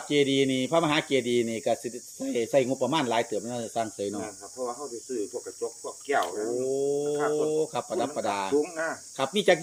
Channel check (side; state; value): both; identical; correlation 1.00